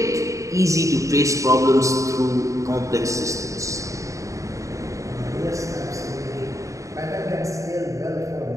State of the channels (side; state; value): left; late; 0.15 ms